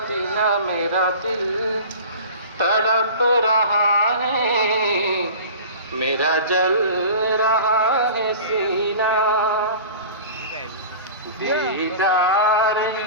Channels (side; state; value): both; inverted; correlation -0.38